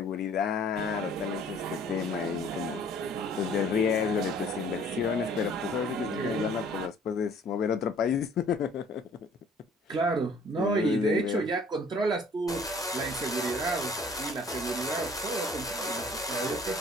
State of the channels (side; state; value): both; normal; correlation 0.55